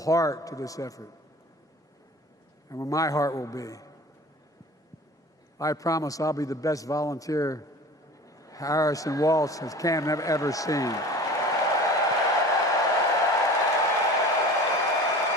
to this effort, and where my heart will be. I promise I'll be the best volunteer Harrison Walsh has Camden ever seen.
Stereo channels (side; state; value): both; normal; correlation 0.40